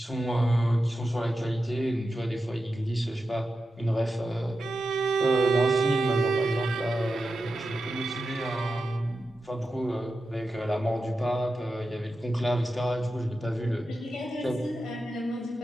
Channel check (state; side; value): normal; both; correlation 0.90